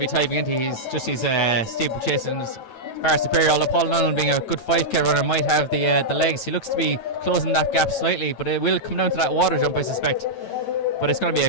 Tyke McGinty. He's steeplechase and is far superior, although Paul O'Donnell, being a good 5k runner, might have the legs. He looks to be closing that gap slightly, but it will come down to that water jump, I suspect. But it's going to be a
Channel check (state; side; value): late; right; 9.1 ms